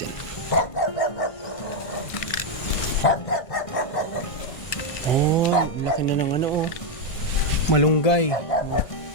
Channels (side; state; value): right; late; 1.5 ms